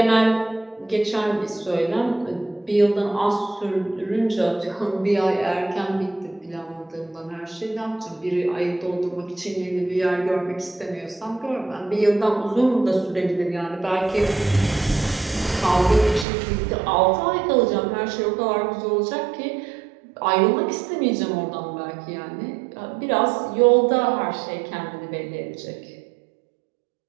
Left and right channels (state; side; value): drops out; left; at 16.2 s